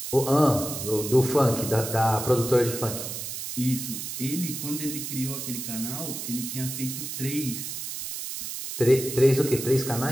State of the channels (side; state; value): right; noise; hiss, 6 dB below the sound